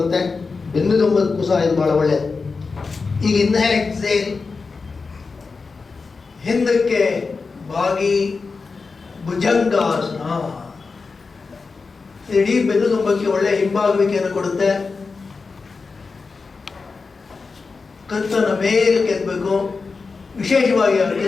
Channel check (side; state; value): right; quieter; 4.5 dB